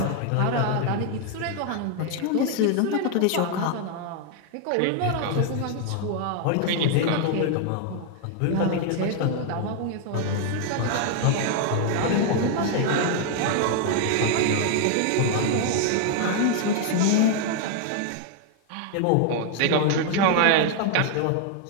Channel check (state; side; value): different; both; correlation 0.00